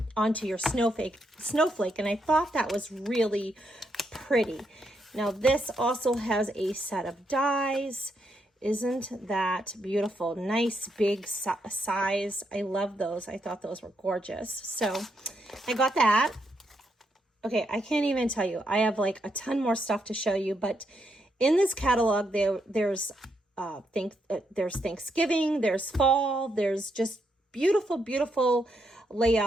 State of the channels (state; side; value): normal; both; correlation 0.79